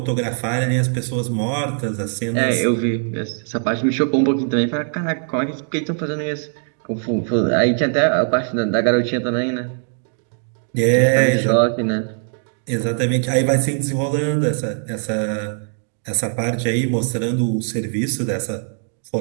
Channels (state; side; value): silent; left; 60 dB below the other